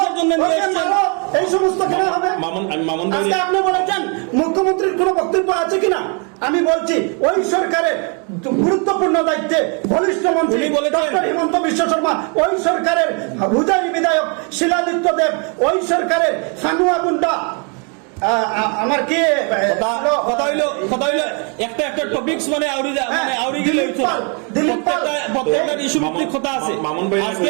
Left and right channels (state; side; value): quieter; left; 36.3 dB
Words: জন্য নিয়ে এসেছেন? এই সমস্ত কেন হবে? মামুন ভাই আজকে আপনি বলেছেন মুখ্যমন্ত্রীর কোনো বক্তব্য আছে কিনা? আমি বলছি ওই সরকারের গুরুত্বপূর্ণ দায়িত্বে বলিষ্ঠ মন্ত্রী ডক্টর হিমন্ত বিশ্ব শর্মা, ওই সরকারের হুজারি বিধায়ক শিলাদিত্য দেব, ওই সরকারের সানুয়া গুন্ডা, আমার কি কথা হইলো একটা টপিকস মানে আউরি গেলে প্রত্যেকটা ইস্যু ভিত্তিক কথা আছে। মামুন ভাই